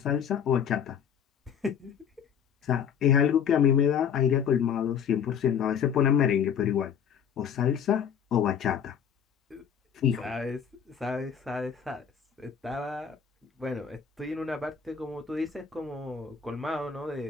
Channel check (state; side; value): quieter; right; 7.7 dB